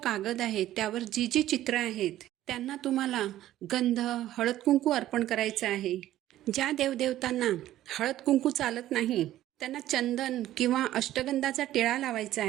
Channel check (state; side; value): quieter; left; 13.6 dB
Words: आहे त्यावर जी जी चित्र आहेत त्यांना तुम्हाला गंध, हळद कुंकू अर्पण करायचं आहे. ज्या देवदेवतांना हळद कुंकू चालत नाही त्यांना चंदन किंवा अष्टगंधाचा टिळा लावायचा